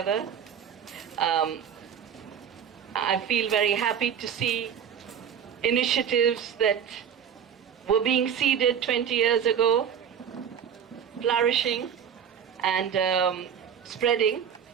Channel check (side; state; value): left; quieter; 8.1 dB